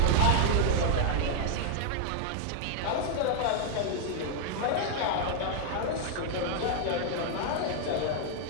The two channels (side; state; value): both; different; correlation 0.00